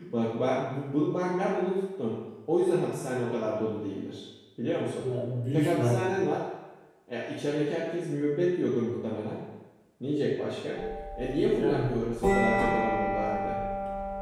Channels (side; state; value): both; identical; correlation 1.00